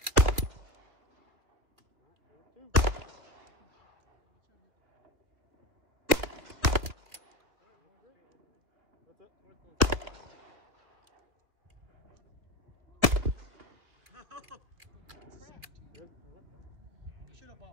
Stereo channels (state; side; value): late; left; 2.2 ms